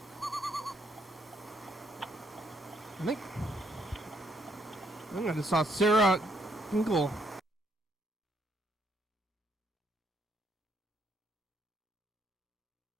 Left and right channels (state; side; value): normal; both; correlation 0.72